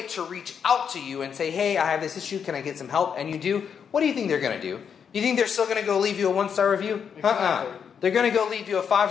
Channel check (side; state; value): right; quieter; 7.2 dB